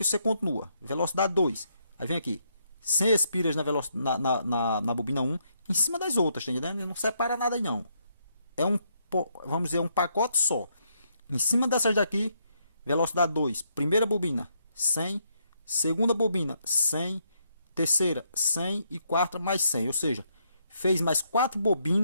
você continua. Velocidade 2. Aí vem aqui. 100 espiras na bobina 1. Em cima das outras, tá entendendo? Não separa nada aí não. É vamos dizer, um pacote só. Em cima dessas daqui, velocidade 2. Primeira bobina, 100. Segunda bobina, 100. Terceira, 100. E quarta, mais 100. Ou seja, fez mais 4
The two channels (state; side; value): inverted; both; correlation -0.75